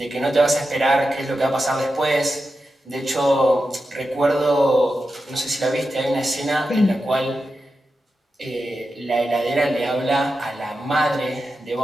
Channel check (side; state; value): both; normal; correlation 0.90